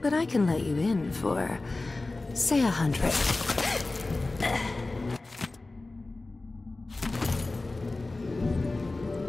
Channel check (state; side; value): quieter; right; 3.2 dB